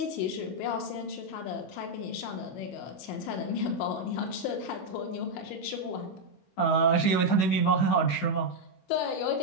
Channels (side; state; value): right; late; 16 ms